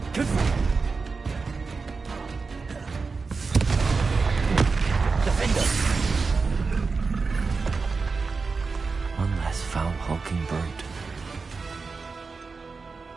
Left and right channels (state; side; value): quieter; left; 4.5 dB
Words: Defender! One less foul-hulking brute.